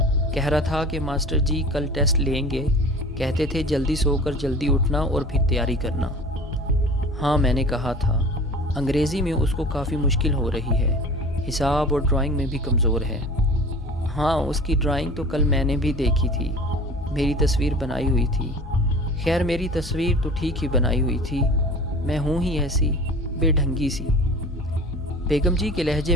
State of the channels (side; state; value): both; normal; correlation 0.40